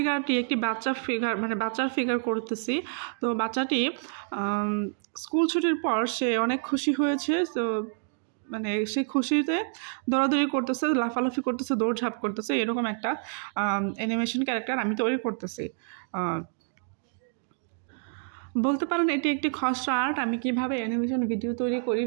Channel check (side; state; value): left; silent; 59 dB below the other